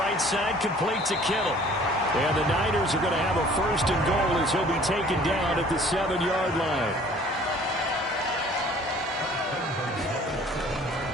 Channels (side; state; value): both; normal; correlation 0.52